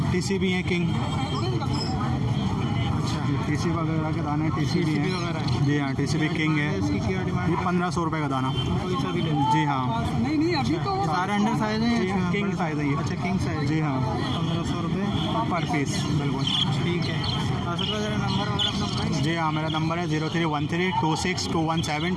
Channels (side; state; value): both; identical; correlation 1.00